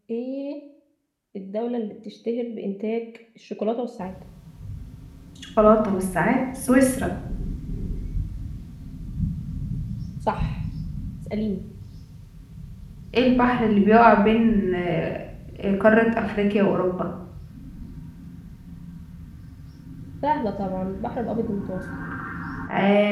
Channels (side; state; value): both; identical; correlation 1.00